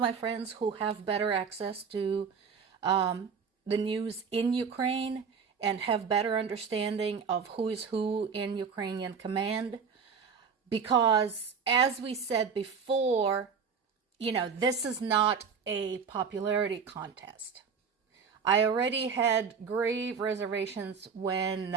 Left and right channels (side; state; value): left; quieter; 6.1 dB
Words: friends who have better access to the news in Ukraine and have better understanding of who is who in Ukrainian command. Because as we said before, this is not a popularity contest. I already had grave reservations when